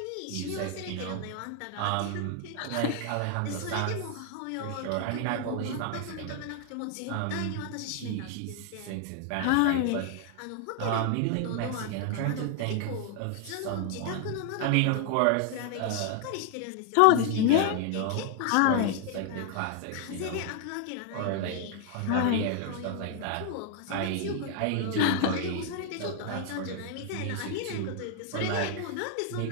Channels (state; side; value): different; both; correlation 0.00